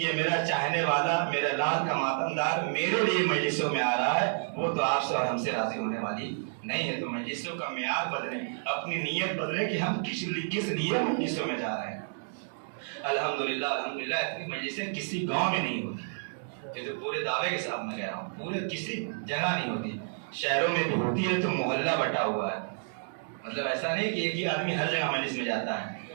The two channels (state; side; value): silent; left; digital silence